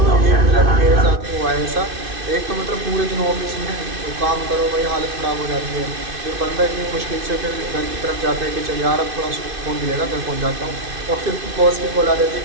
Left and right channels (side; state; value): left; late; 2.5 ms